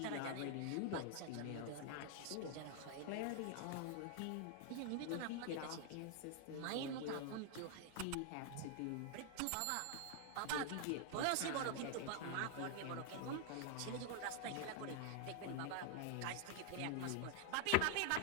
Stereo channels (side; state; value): both; different; correlation 0.00